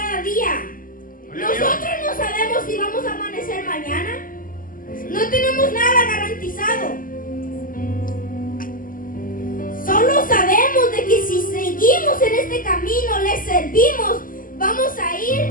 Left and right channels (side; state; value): right; late; 0.41 ms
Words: día. Nosotros no sabemos si vamos a amanecer mañana. No tenemos nada garantizado. Solo sabemos de que si seguimos en este camino, le servimos, vamos a ir